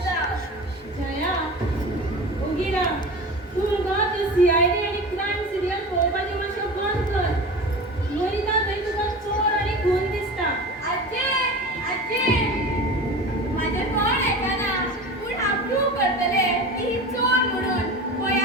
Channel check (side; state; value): both; normal; correlation 0.33